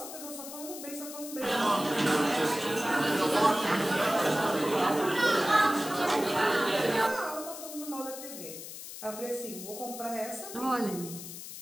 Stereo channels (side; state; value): left; noise; hiss, 11 dB below the sound